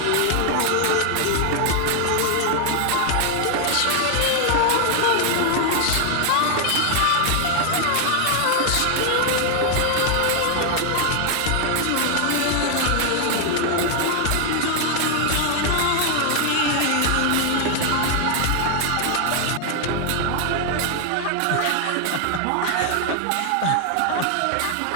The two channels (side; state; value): both; different; correlation 0.00